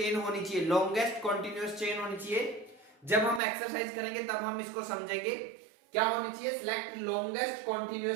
होनी चाहिए। लॉन्गेस्ट कॉन्टिन्यूअस चेन होनी चाहिए। जब हम एक्सरसाइज करेंगे तब हम इसको समझेंगे। क्या होनी चाहिए? Select longest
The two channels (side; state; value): left; drops out; at 3.4 s